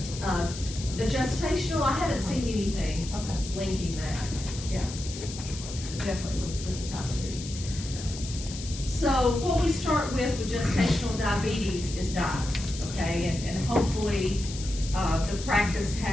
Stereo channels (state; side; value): noise; left; hiss, 11 dB below the sound